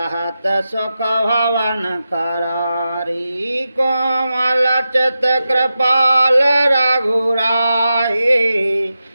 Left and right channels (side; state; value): both; inverted; correlation -0.91